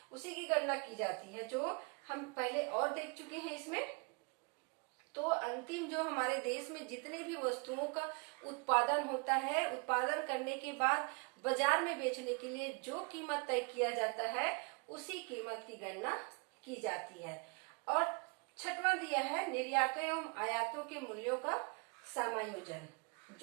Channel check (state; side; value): quieter; left; 33.9 dB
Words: उसी की गणना की जाती है, जो हम पहले और देख चुके हैं इसमें। तो अंतिम जो हमारे देश में जितने भी वस्तुओं का उत्पादन होता है, उत्पादन करने के बाद बाजार में बेचने के लिए जो कीमत तय किया जाता है, उसी कीमत की गणना की जाती है। और छठवां दिया है निर्यातों एवं आयातों के मूल्यों का समायोजन।